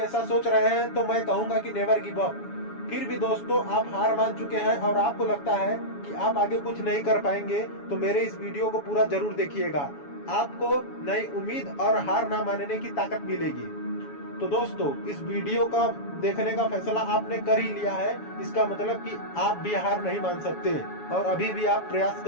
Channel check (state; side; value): late; right; 7.1 ms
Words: सोच रहे हैं तो मैं कहूंगा कि नेवर गिव अप। फिर भी दोस्तों आप हार मान चुके हैं और आपको लगता है कि आप आगे कुछ नहीं कर पाएंगे तो मेरे इस वीडियो को पूरा जरूर देखिएगा। आपको नई उम्मीद और हार ना मानने की ताकत मिलेगी। तो दोस्तों इस वीडियो का देखने का फैसला आपने कर ही लिया है, इसका मतलब कि आप भी हार नहीं मान सकते और अभी भी आप प्रयास